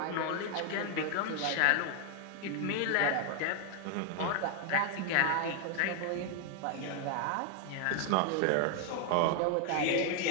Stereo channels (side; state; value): both; different; correlation 0.00